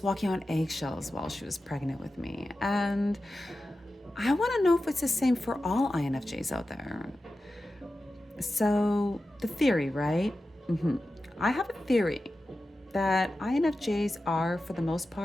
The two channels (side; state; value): both; normal; correlation 0.93